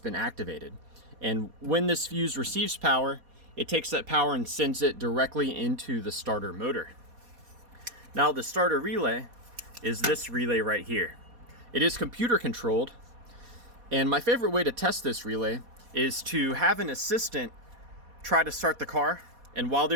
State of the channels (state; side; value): late; left; 4.2 ms